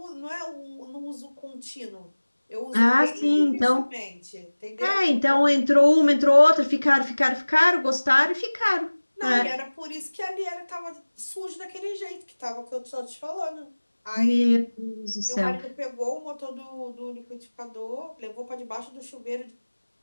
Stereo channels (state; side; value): inverted; both; correlation -1.00